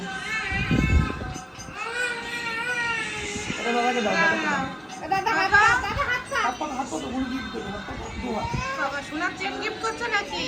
এটা দাদাকে দাও, দাদাকে দাও। দাদা হাত হাত পাতো, কোনো গিফট দেবো, হাত পাতো, দু হাত। বাবা সোনার চেন গিফট করছো নাকি?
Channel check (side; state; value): both; identical; correlation 1.00